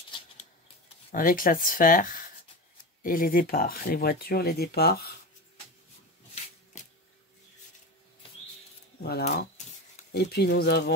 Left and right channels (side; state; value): both; normal; correlation 0.25